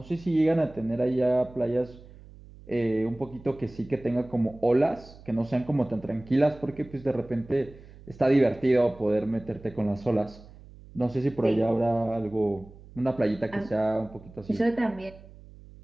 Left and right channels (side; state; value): right; noise; hum, 20 dB below the sound